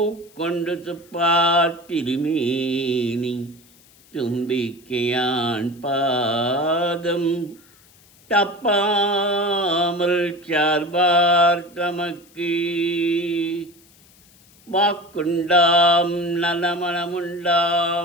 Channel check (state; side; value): noise; left; hiss, 28 dB below the sound